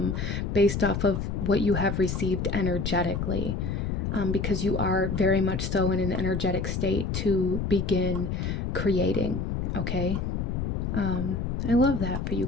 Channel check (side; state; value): left; noise; rumble, 2 dB below the sound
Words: based off of what you have received energetically, because you are very much so in an energetic state to begin creating. Okay. I love that for you